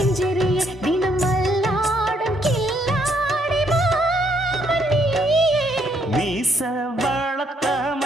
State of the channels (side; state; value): both; normal; correlation 0.71